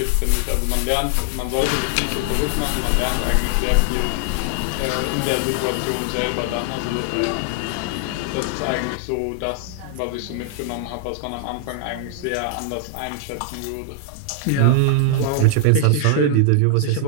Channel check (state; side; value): different; both; correlation 0.00